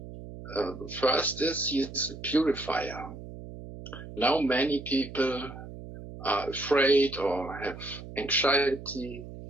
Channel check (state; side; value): noise; right; hum, 13 dB below the sound